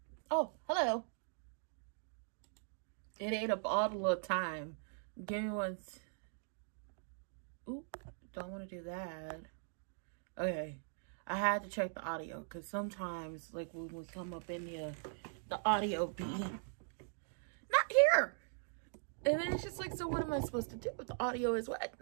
Oh, hello. It ate up all the little time. Give me one. Oop, don't want to do that. Okay. I had to check the audio because sometimes, like, when we come up in here, the audio be not here. And then it's just like, so what am I supposed to do if the audio is what?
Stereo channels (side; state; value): left; silent; digital silence